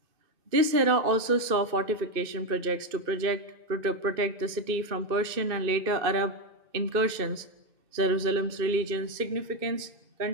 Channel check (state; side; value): late; left; 2.5 ms